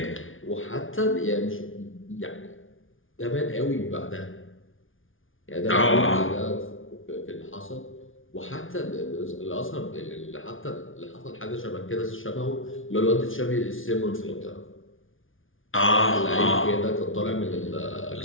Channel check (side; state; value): right; late; 0.58 ms